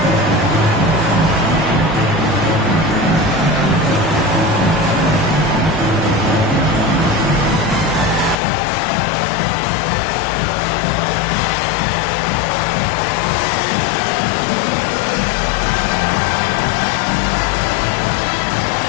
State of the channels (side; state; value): right; drops out; at 8.3 s